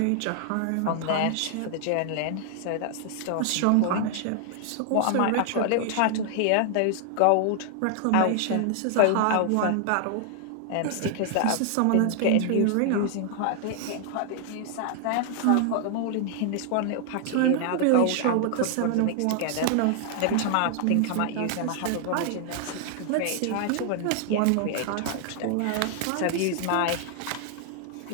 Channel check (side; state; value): both; different; correlation 0.00